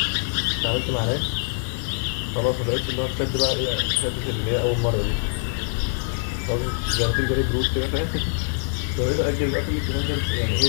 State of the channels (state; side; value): silent; right; 59 dB below the other